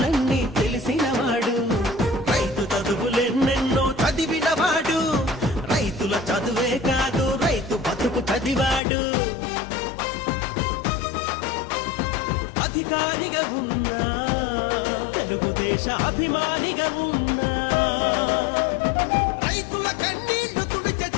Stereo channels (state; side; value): drops out; right; at 8.8 s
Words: తెలిసినవాడు. రైతు చదువులెన్నెన్నో చదివినవాడు. రైతుల చదువే కాదు రైతు బతుకు చదివాడు. అధికారిగా ఉన్నా, తెలుగుదేశ అభిమానిగా ఉన్నా, రైతుల కన్నీళ్లు తుడిచే